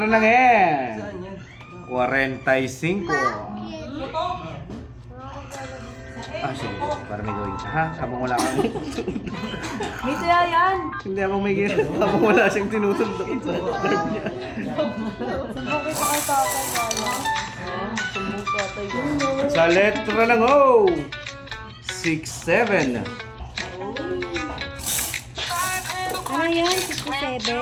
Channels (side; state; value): both; identical; correlation 1.00